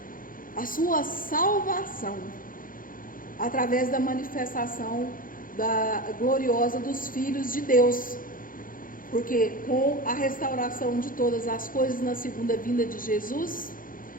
a sua salvação, através da manifestação gloriosa dos filhos de Deus. Porque com a restauração de todas as coisas na segunda vinda de Jesus,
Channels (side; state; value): right; late; 0.40 ms